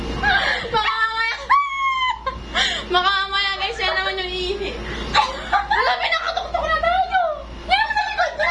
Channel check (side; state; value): both; identical; correlation 1.00